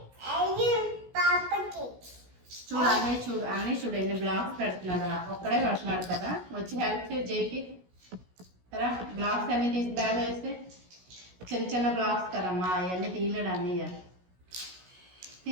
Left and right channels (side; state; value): left; late; 16 ms